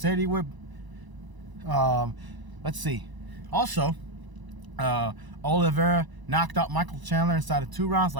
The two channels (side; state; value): left; late; 1.0 ms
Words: he would. Let's see. Also, Oliveira knocked out Michael Chandler inside of 2 rounds